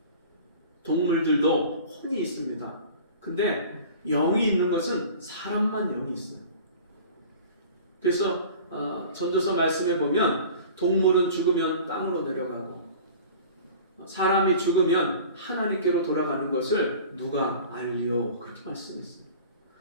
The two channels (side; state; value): both; inverted; correlation -0.42